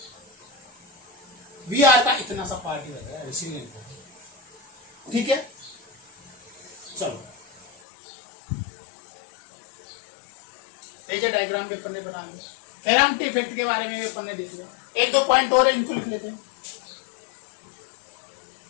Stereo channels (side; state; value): right; drops out; at 7.8 s